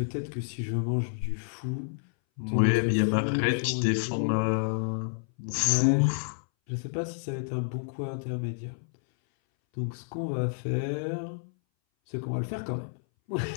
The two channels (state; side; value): silent; right; 58 dB below the other